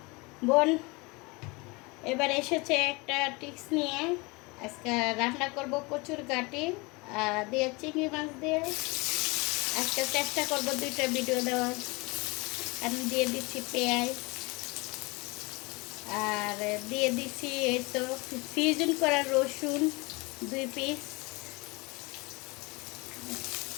বোন এবার এসেছে একটা টিপস নিয়ে। আজকে রান্না করব কচুর গাটি দিয়ে চিংড়ি মাছ দিয়ে। আজকে চেষ্টা করব দুইটা ভিডিও দেওয়ার। আমি দিয়ে দিচ্ছি পেঁয়াজ, আর দিয়ে দিচ্ছি এই তো ফ্রিজিং করা রসুন 2 পিস।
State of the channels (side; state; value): right; quieter; 26.4 dB